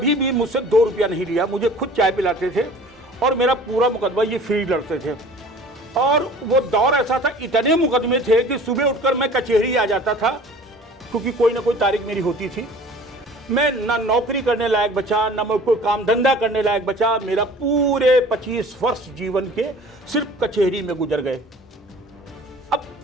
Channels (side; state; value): both; normal; correlation 0.46